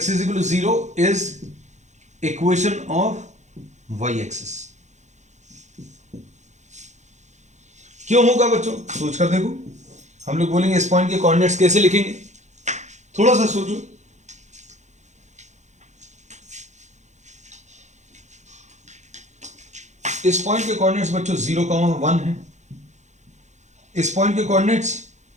is equal to 0 is equation of y axis. क्यों होगा बच्चों? सोच कर देखो। हम लोग बोलेंगे इस पॉइंट के कोऑर्डिनेट्स कैसे लिखेंगे, थोड़ा सा सोचो। इस पॉइंट के कोऑर्डिनेट्स बच्चों 0,1 है। इस पॉइंट के कोऑर्डिनेट्स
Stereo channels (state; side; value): late; left; 0.34 ms